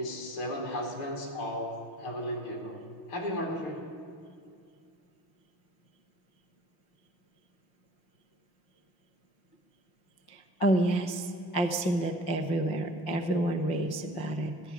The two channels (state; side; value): late; right; 5.7 ms